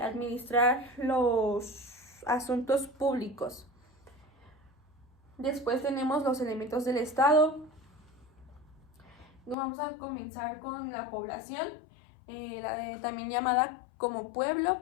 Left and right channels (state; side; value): drops out; right; at 9.6 s